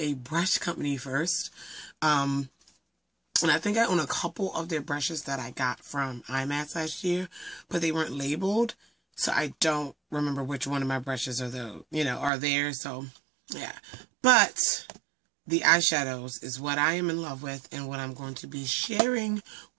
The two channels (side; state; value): left; drops out; at 12.3 s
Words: brush company first. And I think I own a couple of their brushes that I got from IMATS last year, but they weren't labeled. So I don't remember which one of my brushes are there. So, yeah. But the eyeshadows is what I am in love with and what I'm going to be sharing